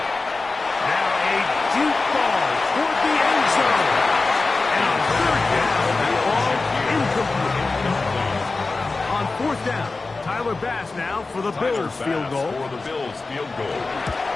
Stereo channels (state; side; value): quieter; right; 3.7 dB